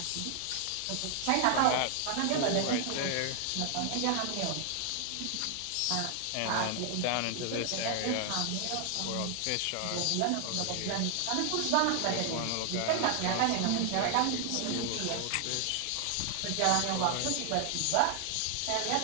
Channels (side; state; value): both; different; correlation 0.00